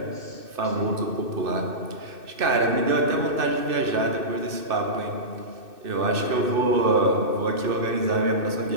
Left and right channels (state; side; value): late; left; 2.6 ms